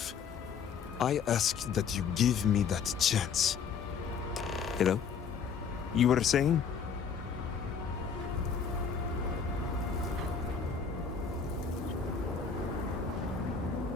I ask that you give me that chance. Hello? You were saying?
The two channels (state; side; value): quieter; right; 6.3 dB